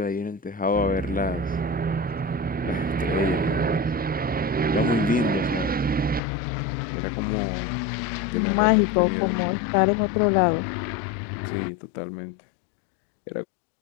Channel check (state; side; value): drops out; right; at 6.2 s